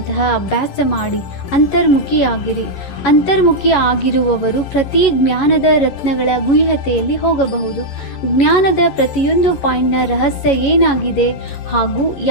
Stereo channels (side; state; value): right; late; 11 ms